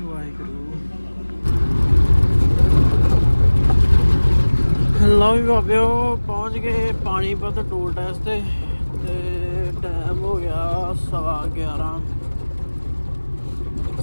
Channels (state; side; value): inverted; both; correlation -1.00